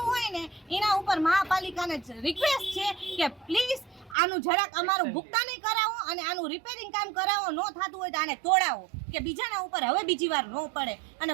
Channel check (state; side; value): drops out; left; at 4.2 s